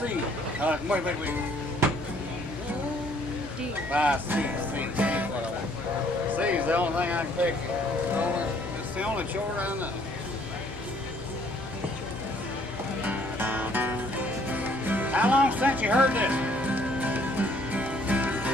Wait. C. C is the only thing I can pick. It's the only chord I know. How long since you heard this?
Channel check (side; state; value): both; normal; correlation 0.62